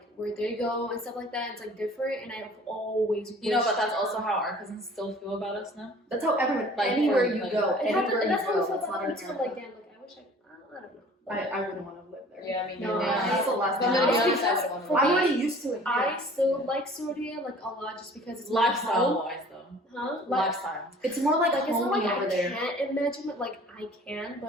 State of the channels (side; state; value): both; normal; correlation 0.49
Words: where they go and stuff like that. It's like different, and I've always You know, but wished- that's also how our cousins still feel about us now. That's how everyone, Like, anywhere for, you like, go, It happened, anywhere and you that's how go, I feel that's about not it. It's America. like damn, like I wish I don't know. I wouldn't want to live there. Yeah, I mean, No, yeah. That's the last thing. I'm gonna be I- honest, I because would want for to. I'm me, already used to it. I still like Syria like a lot just because it's my Lifestyle home. wise, though. Huh? Like, Lifestyle. It's more like it's not homey like over I there. can't imagine it. Like I can,